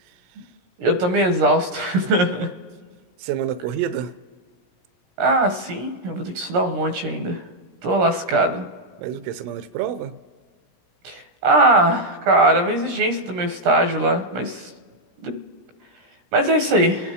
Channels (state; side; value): late; left; 17 ms